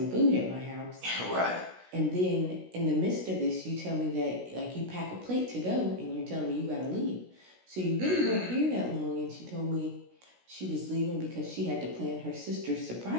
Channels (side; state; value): left; late; 16 ms